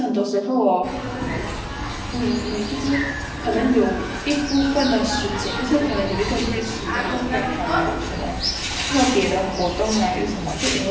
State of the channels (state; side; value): identical; both; correlation 1.00